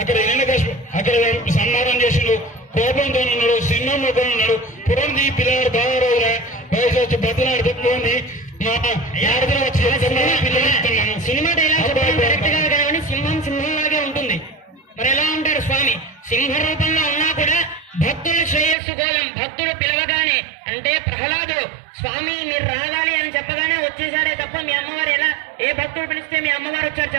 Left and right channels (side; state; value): left; drops out; at 18.8 s